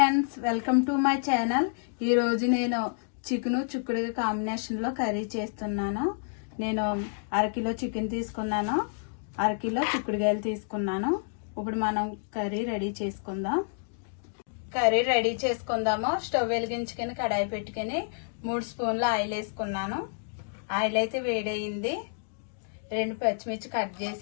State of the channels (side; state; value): right; silent; digital silence